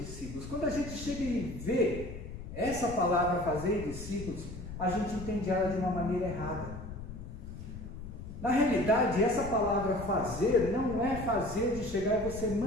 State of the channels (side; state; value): left; noise; rumble, 10 dB below the sound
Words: Quando a gente chega e vê essa palavra fazer discípulos, a gente entende ela de uma maneira errada. Na realidade, essa palavra fazer não é fazer de chegar e você